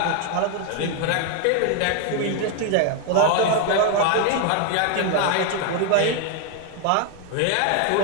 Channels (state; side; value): different; both; correlation 0.00